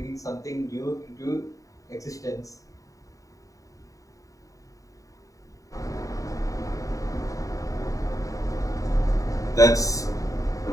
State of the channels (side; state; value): right; late; 0.16 ms